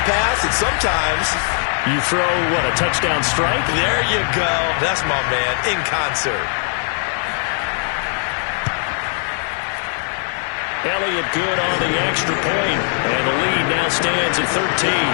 pass, and sometimes you throw, what, a touchdown strike? There you go. That's my man, in concert. Elliott good on the extra point, and the lead now stands at 13.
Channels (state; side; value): silent; right; 55 dB below the other